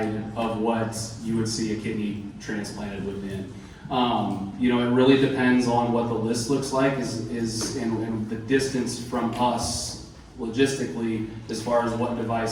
of what you would see a kidney transplanted within. You know, it really depends on what the list looks like and the distance from us logistically as far as what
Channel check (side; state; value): both; identical; correlation 1.00